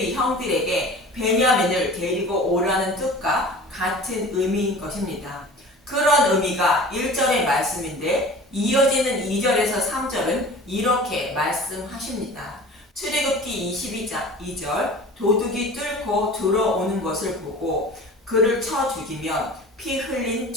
형들에게 베냐민을 데리고 오라는 뜻과 같은 의미인 것입니다. 그런 의미가 1절의 말씀인데 이어지는 2절에서 3절은 이렇게 말씀하십니다. 출애굽기 22장 2절 도둑이 뚫고 들어오는 것을 보고 그를 쳐 죽이면 피 흘린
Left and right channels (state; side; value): normal; both; correlation 0.41